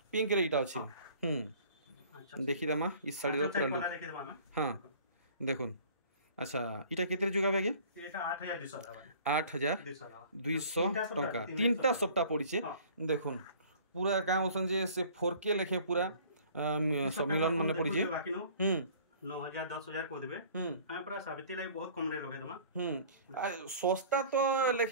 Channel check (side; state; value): both; inverted; correlation -0.50